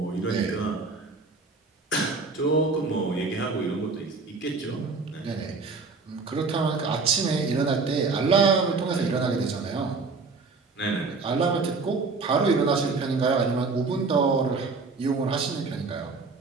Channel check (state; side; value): quieter; left; 4.2 dB